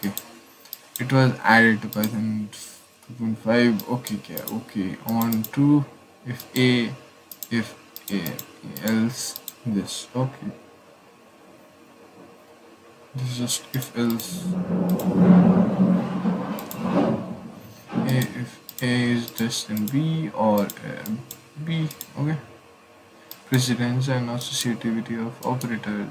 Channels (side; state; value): both; identical; correlation 1.00